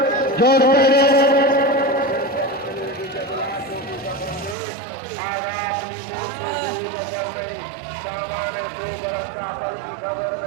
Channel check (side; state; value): left; drops out; at 4.5 s